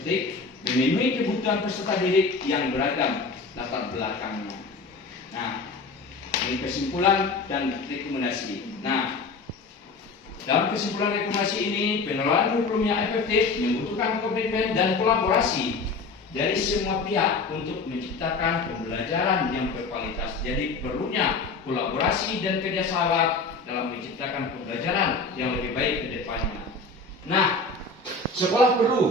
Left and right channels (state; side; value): quieter; right; 3.9 dB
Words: memenuhi kebutuhan peserta didik yang beragam latar belakangnya. Nah, ini kesimpulan dan rekomendasi. Nah, dalam kesimpulan rekomendasi ini, pengelolaan kurikulum yang efektif membutuhkan komitmen dan kolaborasi dari semua pihak untuk menciptakan pembelajaran yang berkualitas. Jadi perlunya kolaborasi dan kerjasama dalam menciptakan pembelajaran yang lebih baik ke depannya. Nah, sekolah